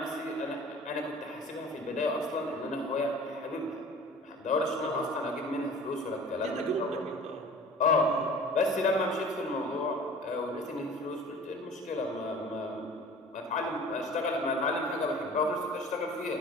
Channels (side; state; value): both; normal; correlation 0.44